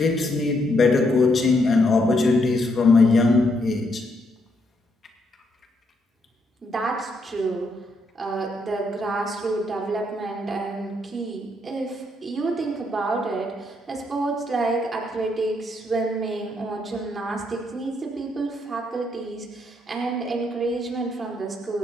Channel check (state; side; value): normal; both; correlation 0.75